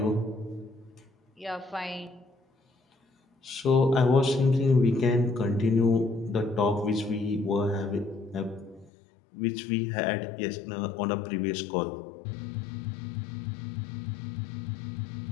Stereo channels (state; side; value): drops out; right; at 8.9 s